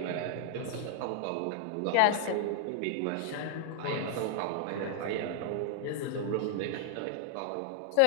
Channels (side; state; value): both; different; correlation 0.00